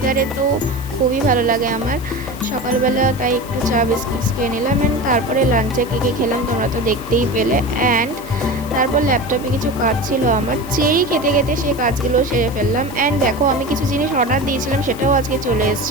তো খুবই ভালো লাগে আমার। সকালবেলা তাই একটু চা বিস্কিটস খেয়ে নিলাম, অ্যান্ড তারপরে লাঞ্চে কী খেলাম তোমরা তো দেখতেই পেলে। অ্যান্ড তারপর ল্যাপটপে কিছু কাজ ছিল আমার, চেরি খেতে খেতে সেই কাজগুলো সেরে ফেললাম। অ্যান্ড দেখো, আমি কিছু জিনিস অর্ডার দিয়েছিলাম সেটাও আজকে চলে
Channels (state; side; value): noise; left; hiss, 18 dB below the sound